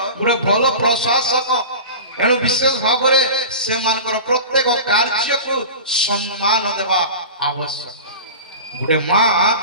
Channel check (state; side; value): inverted; both; correlation -0.33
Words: गुटे भलो प्रशासक। एनु विशेष भाव रे से मानकर प्रत्येक कार्य को सम्मान देबा आवश्यक। गुटे मां